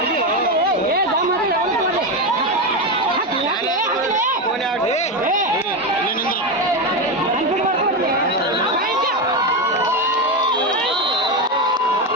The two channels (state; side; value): normal; both; correlation 0.13